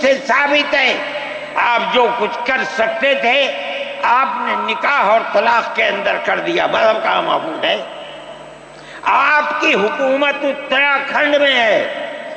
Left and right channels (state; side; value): identical; both; correlation 1.00